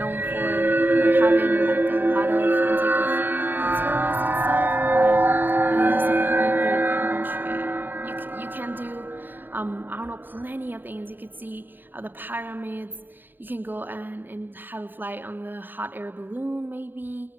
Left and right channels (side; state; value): left; late; 0.092 ms